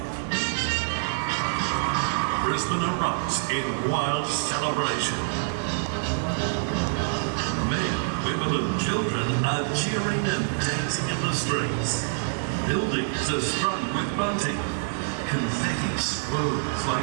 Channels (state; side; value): silent; left; 61 dB below the other